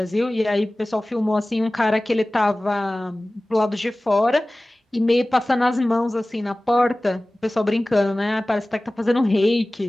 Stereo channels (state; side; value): normal; both; correlation 0.98